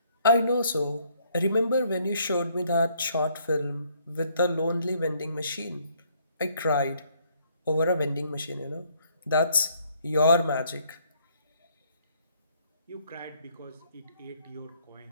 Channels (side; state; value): both; inverted; correlation -0.66